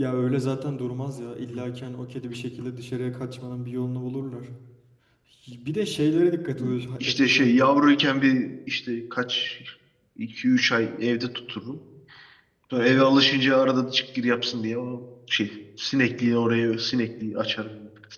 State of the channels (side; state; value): both; identical; correlation 1.00